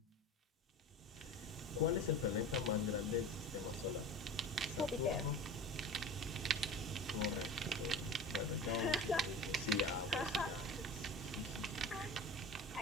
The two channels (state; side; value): normal; both; correlation 0.34